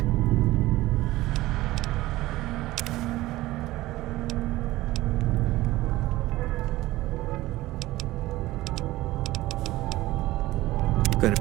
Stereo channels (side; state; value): left; quieter; 17.4 dB